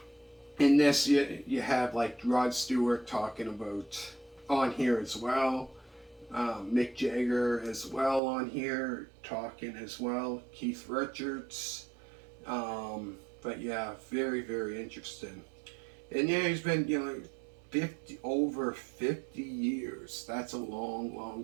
in this, you have Rod Stewart talking about on here as well. Mick Jagger as well on here talking as well. Keith Richards. But yeah, very, very interesting. And yeah, he's been over 50 years. That's a long,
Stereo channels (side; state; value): left; drops out; at 8.2 s